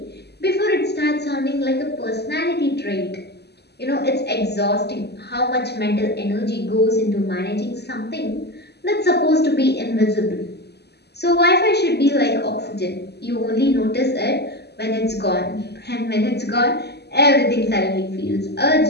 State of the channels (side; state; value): right; late; 0.48 ms